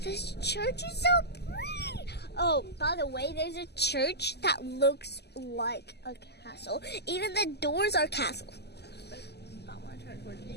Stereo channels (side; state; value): right; late; 0.49 ms